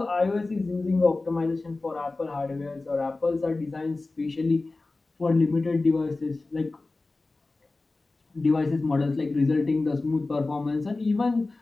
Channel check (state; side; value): quieter; right; 3.3 dB